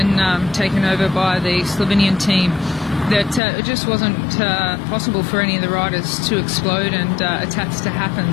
taken over by the Slovenian team, that it just wasn't possible for any of the riders to explode and attacks to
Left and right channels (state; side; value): drops out; right; at 3.4 s